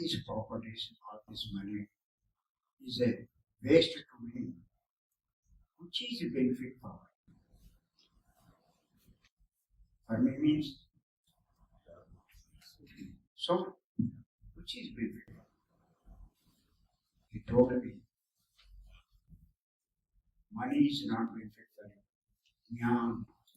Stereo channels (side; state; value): both; identical; correlation 1.00